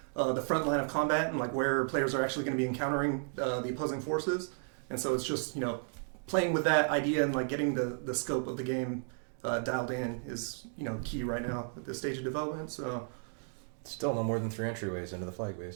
the front line of combat, and, like, where players are actually going to be encountering the opposing forces. And so it's just, you know, playing with that idea and, like, getting the scope of the game dialed in is, you know, key right now at this stage of development. So... Still no more than 3 entryways into the flag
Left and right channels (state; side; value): silent; left; 55 dB below the other